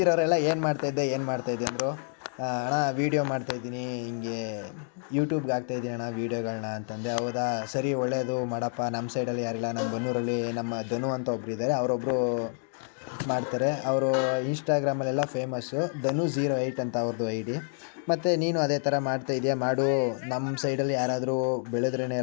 ಏನು ಮಾಡ್ತಾಯಿದ್ದೆ ಅಂದರು. ಅಣ್ಣ ವೀಡಿಯೋ ಮಾಡ್ತಾಯಿದ್ದೀನಿ, ಹಿಂಗೆ ಯೂಟ್ಯೂಬ್ಗೆ ಹಾಕ್ತಾಯಿದ್ದೀನಿ ಅಣ್ಣ ವೀಡಿಯೋಗಳನ್ನ ಅಂತಂದೆ. ಹೌದಾ, ಸರಿ ಒಳ್ಳೆಯದು ಮಾಡಪ್ಪ. ನಮ್ಮ ಸೈಡಲ್ಲಿ ಯಾರಿಲ್ಲ, ನಮ್ಮ ಬನ್ನೂರಲ್ಲಿ ನಮ್ಮ ಧನು ಅಂತ ಒಬ್ಬರು ಇದ್ದಾರೆ, ಅವರೊಬ್ಬರು ಮಾಡ್ತಾರೆ. ಅವರು ಇನ್ಸ್ಟಾಗ್ರಾಮಲ್ಲೆಲ್ಲ ಫೇಮಸ್ಸು, ಧನು08 ಅಂತ ಅವ್ರದ್ದು ID. ಮತ್ತು ನೀನು ಅದೇ ಥರ ಮಾಡ್ತಾಯಿದ್ಯಾ, ಮಾಡು, ನಮ್ಮ ಸೈಡಲ್ಲಿ ಯಾರಾದರೂ ಬೆಳೆದ್ರೇ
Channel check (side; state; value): right; silent; 59 dB below the other